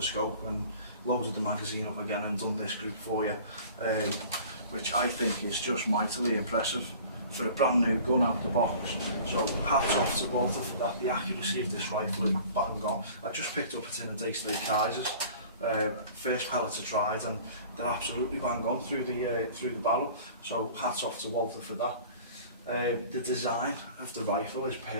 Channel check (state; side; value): inverted; both; correlation -0.45